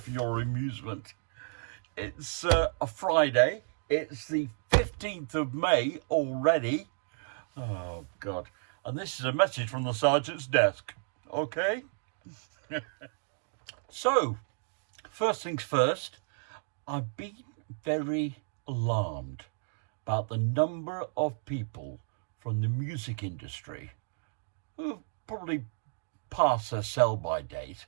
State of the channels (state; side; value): silent; left; digital silence